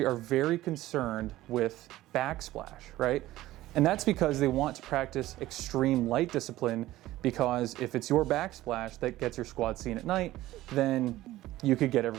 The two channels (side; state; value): left; quieter; 16.0 dB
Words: are very concerned with backsplash, right? And that's because they want to practice extreme light discipline, because if it's your backsplash that gets your squad seen at night, then you could get